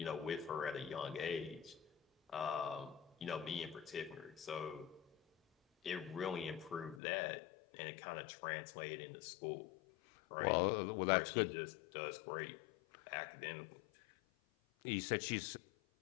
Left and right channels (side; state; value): right; drops out; at 7.0 s